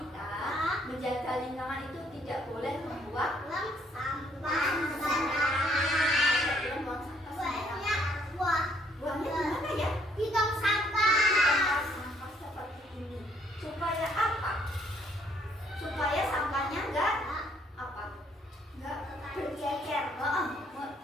menjaga lingkungan itu tidak boleh membuang sampah tidak boleh buang sampah sembarangan. Buangnya di mana ya? di tong sampah. Tempat sampah seperti ini. Supaya apa? Supaya sampahnya enggak bercecer.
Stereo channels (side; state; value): both; normal; correlation 0.66